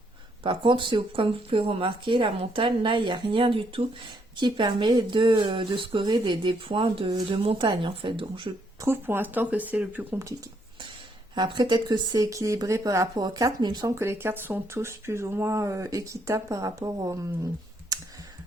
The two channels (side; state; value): both; normal; correlation 0.72